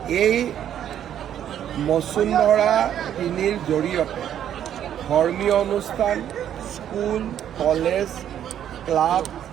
এই বসুন্ধৰা ৩ৰ জৰিয়তে ধৰ্মীয় অনুষ্ঠান, school, college, club,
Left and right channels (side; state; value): left; quieter; 10.2 dB